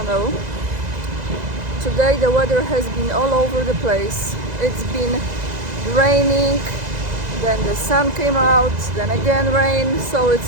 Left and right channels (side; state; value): left; late; 2.0 ms